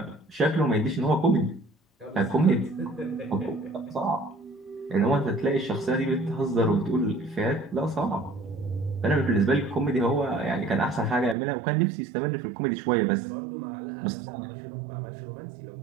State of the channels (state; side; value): drops out; left; at 11.4 s